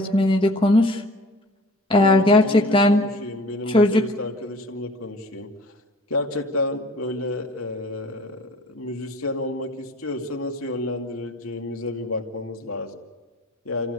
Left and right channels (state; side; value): normal; both; correlation 0.48